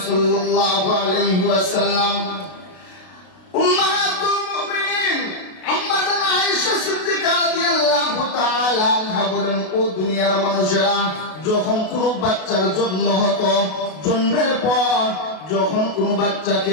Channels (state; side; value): late; right; 32 ms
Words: صلى الله عليه وسلم বলেন, ও দুনিয়ার মানুষেরা, যখন কোনো বাচ্চার জন্ম হতো, জন্মের পর যখন কোনো